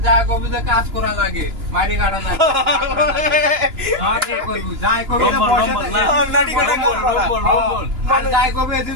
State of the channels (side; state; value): left; late; 2.9 ms